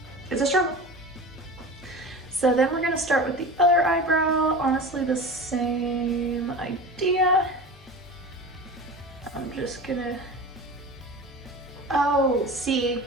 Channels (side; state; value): both; normal; correlation 0.33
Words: It's a struggle. So then we're gonna start with the other eyebrow. Honestly, the same idea. I'm just gonna, oh, see,